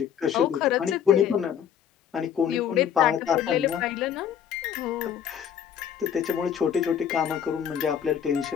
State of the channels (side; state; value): right; quieter; 8.7 dB